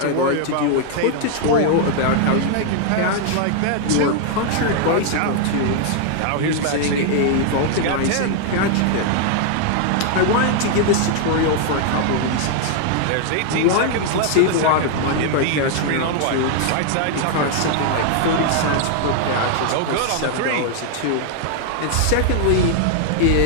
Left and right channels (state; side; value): different; both; correlation 0.00